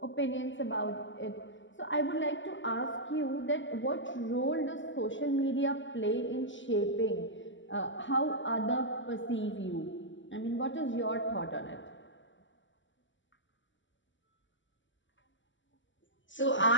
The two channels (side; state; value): right; late; 0.55 ms